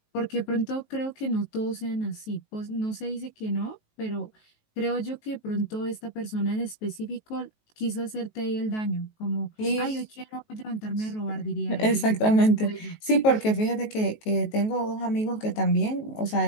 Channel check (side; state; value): right; late; 19 ms